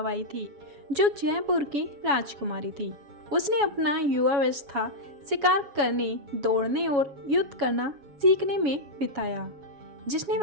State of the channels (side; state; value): left; late; 7.1 ms